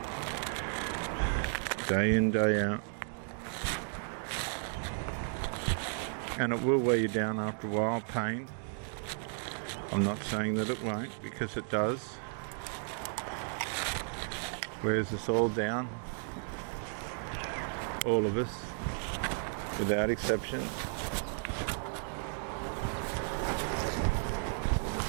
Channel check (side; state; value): left; silent; 55 dB below the other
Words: day in, day out, and it will wear you down after a while, pain. I'm not saying that it won't, because it does. Wears us all down. All of us, without exception.